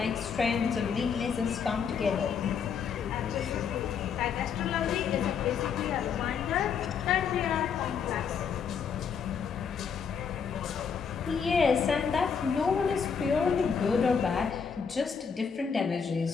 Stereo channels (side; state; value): right; quieter; 6.5 dB